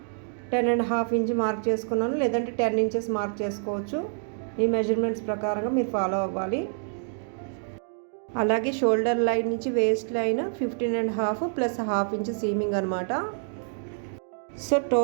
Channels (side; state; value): left; silent; 56 dB below the other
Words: 10.5 ఇంచ్ మార్క్ చేసుకున్నాను, లేదంటే 10 ఇంచెస్ మార్క్ చేసుకోవచ్చు. ఈ మెజర్మెంట్స్ ప్రకారంగా మీరు ఫాలో అవ్వాలి. అలాగే షోల్డర్ లైన్ నుంచి waist line 15.5 plus half inch seaming అనమాట. సో